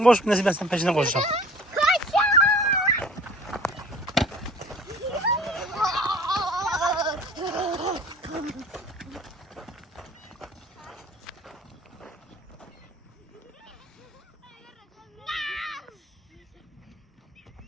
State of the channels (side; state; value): both; normal; correlation 0.47